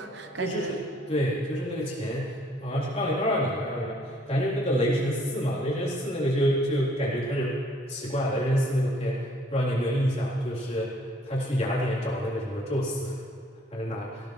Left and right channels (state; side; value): normal; both; correlation 0.62